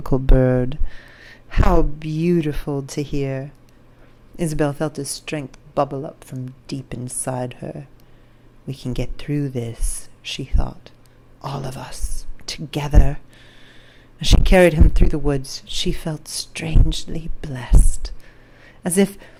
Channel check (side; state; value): both; identical; correlation 1.00